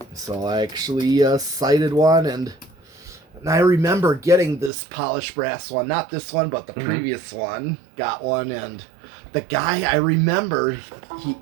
So I actually cited one, and I remember getting this polished brass one, not this one, but the previous one. Got one, and the guy, I remember,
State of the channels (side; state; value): left; drops out; at 4.7 s